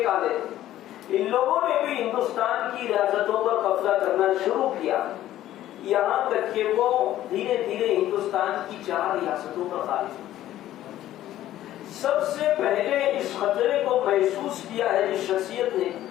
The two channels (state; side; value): quieter; right; 13.4 dB